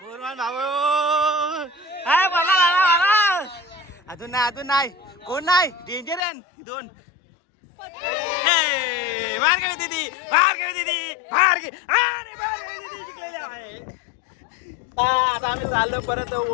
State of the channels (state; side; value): drops out; right; at 6.2 s